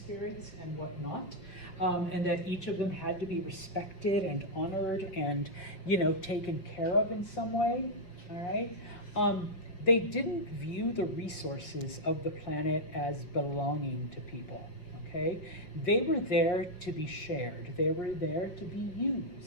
and whatnot, and that each of them had to be respected and honored and, taken care of in some way, all right? They didn't view the resources of the planet as belonging to people, okay? They were there to be shared. They were there to be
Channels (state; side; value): late; right; 5.3 ms